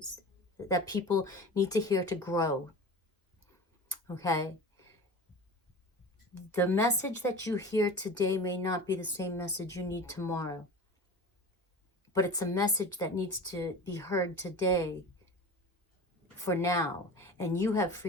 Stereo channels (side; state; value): both; normal; correlation 0.34